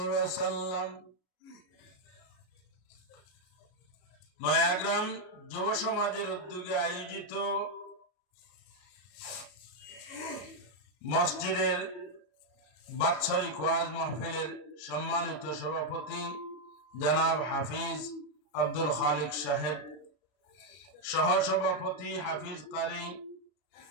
ওয়াসাল্লাম। নয়াগ্রাম যুব সমাজের উদ্যোগে আয়োজিত মসজিদের বাৎসরিক ওয়াজ মাহফিলের সম্মানিত সভাপতি জনাব হাফিজ আব্দুল খালিক সাহেব, সহসভাপতি হাফিজ কারি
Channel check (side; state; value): right; late; 34 ms